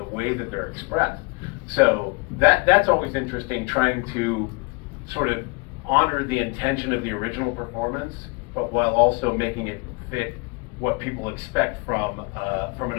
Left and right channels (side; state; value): right; quieter; 30.5 dB